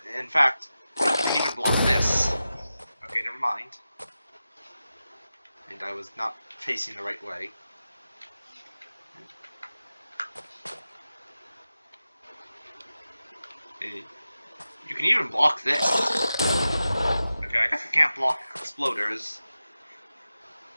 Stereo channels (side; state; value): both; inverted; correlation -0.93